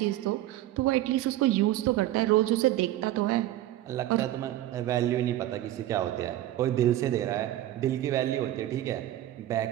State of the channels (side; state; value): left; quieter; 14.1 dB